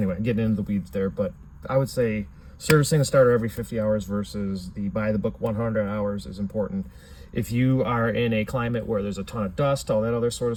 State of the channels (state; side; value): identical; both; correlation 1.00